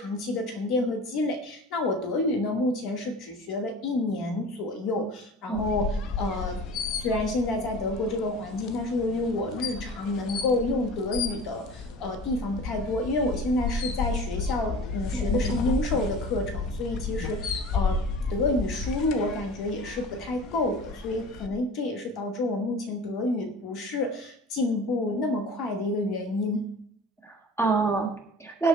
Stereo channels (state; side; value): normal; both; correlation 0.39